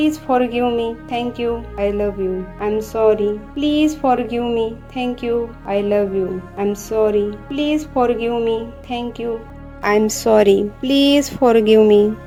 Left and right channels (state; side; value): identical; both; correlation 1.00